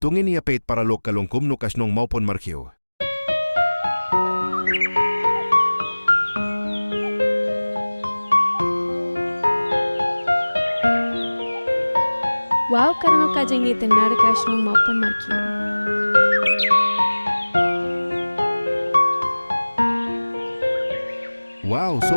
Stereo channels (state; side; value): inverted; both; correlation -1.00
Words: Tungin niya pait para 𝓙𝓾𝓭𝓪𝓷 no shnong mawpon myrkhew. Wow, karano ka dyan itinar ka shnong mawpon myrkhew. Wow, so